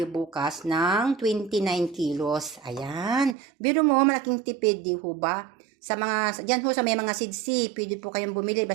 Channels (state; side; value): drops out; left; at 3.4 s